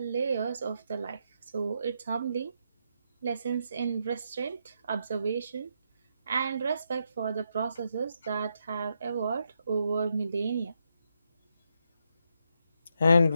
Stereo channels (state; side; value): inverted; both; correlation -0.81